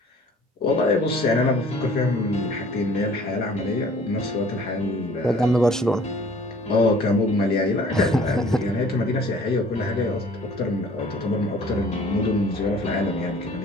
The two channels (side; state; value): both; normal; correlation 0.52